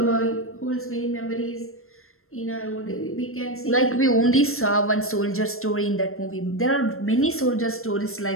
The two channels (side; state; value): right; late; 0.62 ms